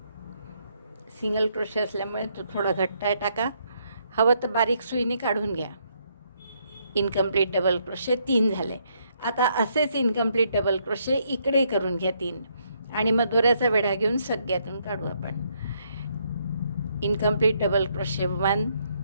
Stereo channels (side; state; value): both; inverted; correlation -0.72